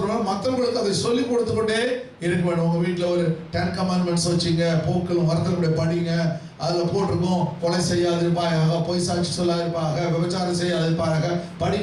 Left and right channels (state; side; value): identical; both; correlation 1.00